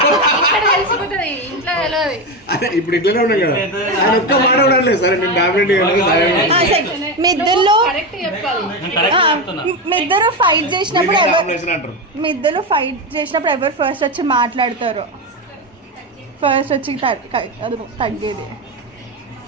తెలిసిపోతుంది, ఇంట్లో తెలియదు. అదే ఇప్పుడు ఇట్లనే ఉన్నాం కదా, ఆయన ఒక్క మాట ఉండలేదు. సరే నేను డామినేటింగ్ మీ ఇద్దరు కరెక్ట్ చెప్పాలి. మీ ఇద్దరు ఫైట్ చేసినప్పుడు అంటారు. మీ ఇద్దరు ఫైట్ చేసినప్పుడు ఎవరు ఫస్ట్ వచ్చి మాట్లాడతారు? ఫస్ట్ వచ్చి అది తగ్గేది.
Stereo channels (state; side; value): normal; both; correlation 0.15